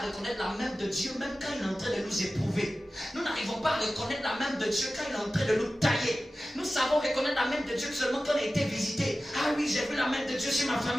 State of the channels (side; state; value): both; normal; correlation 0.95